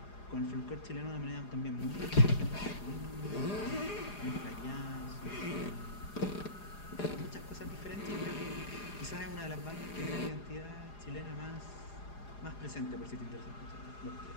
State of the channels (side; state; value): right; late; 4.9 ms